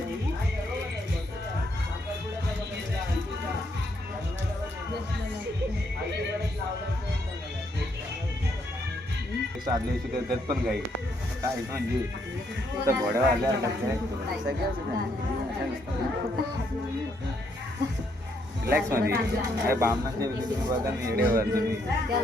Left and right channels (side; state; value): both; normal; correlation 0.73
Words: दिवस आदल्या दिवशी त्यात पण गाई काय म्हणजे आता घोड्यावर आल्या रिलॅक्स मध्ये काय बामणाच्या वेळी तुम्ही बघा ना येडेवर तुम्ही